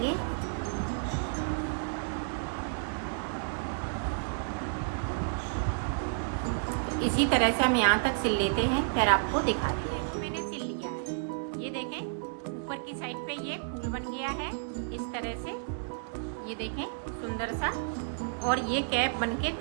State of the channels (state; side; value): silent; left; digital silence